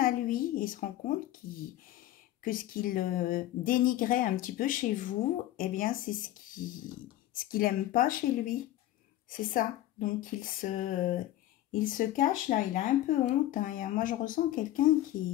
lui. Il se rend compte que ce qu'il dénigrait un petit peu chez vous, eh bien, c'est ce qu'il n'aime pas chez lui. C'est ça. Donc, il se cache, là. Il a un peu honte. Hein. Moi, je ressens quelqu'un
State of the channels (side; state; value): right; quieter; 14.3 dB